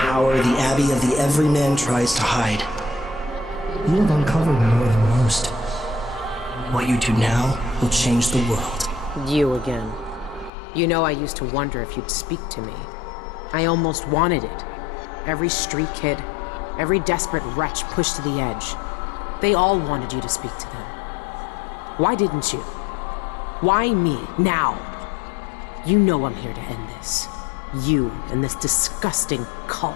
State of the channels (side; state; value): right; drops out; at 10.5 s